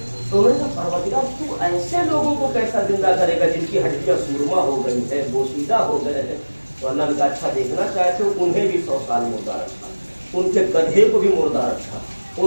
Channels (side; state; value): both; inverted; correlation -1.00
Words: تو انہوں نے کہا پروردگار تو ایسے لوگوں کو کیسا زندہ کرے گا جن کی ہڈیاں سرما ہو گئی ہے، بوسیدہ ہو گئے ہیں؟ تو اللہ نے کہا اچھا دیکھنا چاہتے ہو، انہیں بھی 100 سال مردہ رکھا، ان کے گدھے کو بھی مردہ رکھا،